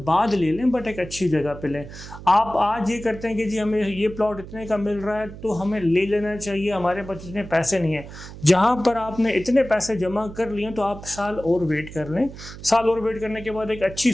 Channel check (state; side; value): noise; right; hum, 14 dB below the sound